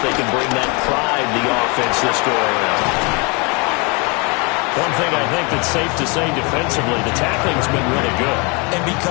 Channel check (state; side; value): quieter; right; 30.6 dB